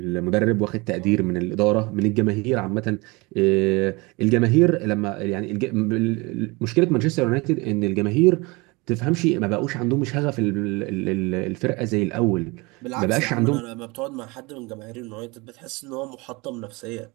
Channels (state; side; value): quieter; left; 25.5 dB